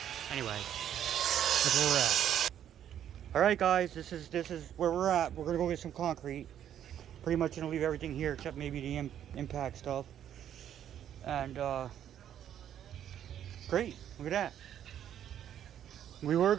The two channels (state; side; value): quieter; left; 10.2 dB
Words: Anyway, that's where we're at. All right, guys, this is where we're at. We're gonna go get some concrete. Pretty much gonna leave everything here except maybe the impact stuff. And great, look at that. We were